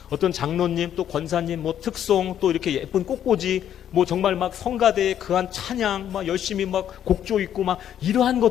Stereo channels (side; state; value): right; quieter; 10.2 dB